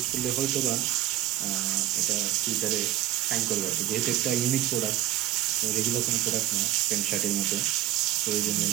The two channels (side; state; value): left; quieter; 14.4 dB